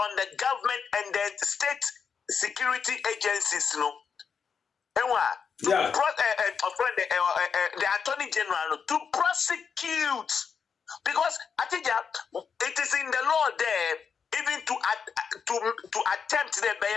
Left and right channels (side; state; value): right; quieter; 6.3 dB